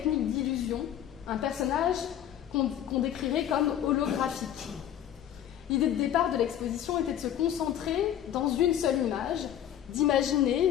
d'illusion, un personnage qu'on décrirait comme holographique. L'idée de départ de l'exposition était de se concentrer dans une seule image,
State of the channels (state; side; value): quieter; right; 10.7 dB